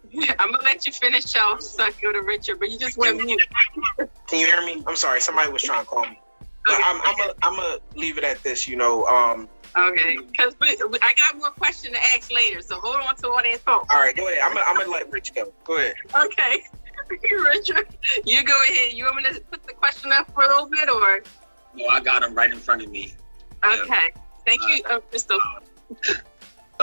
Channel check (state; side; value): inverted; both; correlation -1.00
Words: I'm gonna let you finish off, so go to Richard, but you just went mute. Can you hear me? I'm sorry, somebody was trying to call me. But Okay. I'm gonna leave it at this. Okay, because I got more question to ask later, so hold on to all that thought. All right, go ahead. I'm gonna let Rich go. Go ahead. Okay, Richard, you go ahead. You want me to put the question up for a little bit, or? No, I got them right in front of me. Okay, thank you, Crystal.